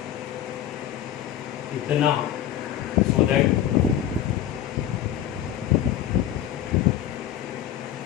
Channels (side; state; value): right; quieter; 11.1 dB